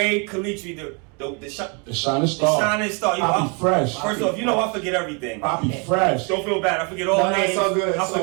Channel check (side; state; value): left; quieter; 34.2 dB